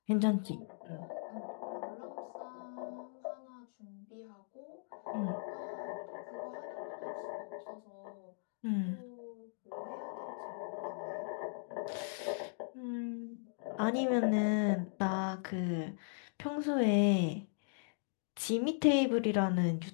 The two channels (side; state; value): right; silent; digital silence